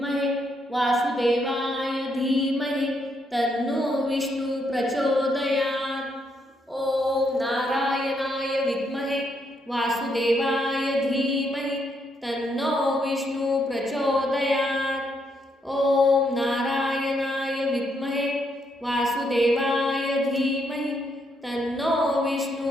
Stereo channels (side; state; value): both; normal; correlation 0.76